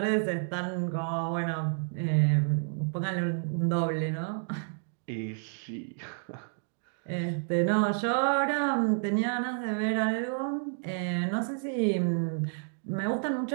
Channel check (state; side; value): silent; left; digital silence